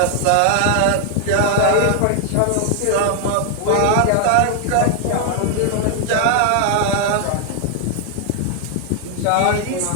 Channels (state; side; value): different; both; correlation 0.00